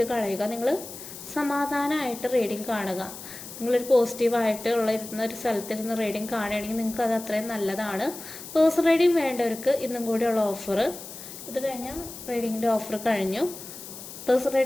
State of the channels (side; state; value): left; noise; hiss, 13 dB below the sound